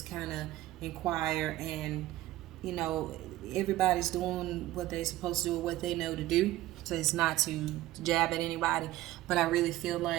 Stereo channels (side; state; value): left; quieter; 15.8 dB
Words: kind of inquire, and you know everybody's doing what they're supposed to do, what they know to do. So it's not to jab at anybody, but I really feel